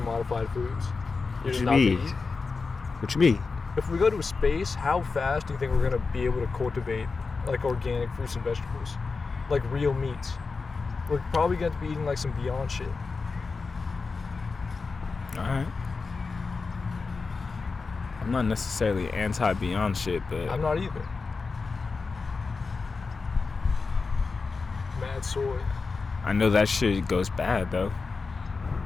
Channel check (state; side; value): quieter; right; 4.4 dB